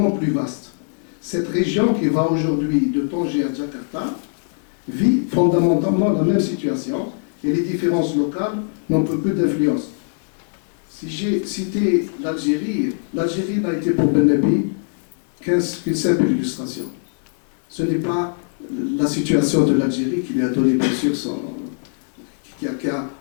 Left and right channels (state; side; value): silent; right; digital silence